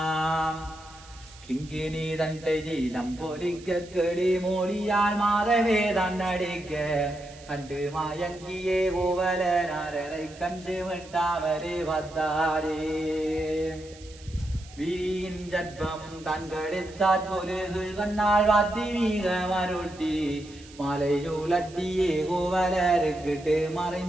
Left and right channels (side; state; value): right; noise; hiss, 21 dB below the sound